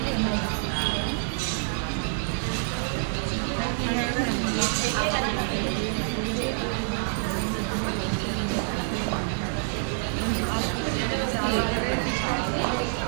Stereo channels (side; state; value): left; silent; 60 dB below the other